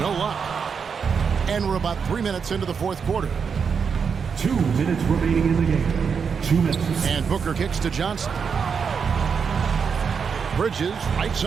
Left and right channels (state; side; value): quieter; left; 6.2 dB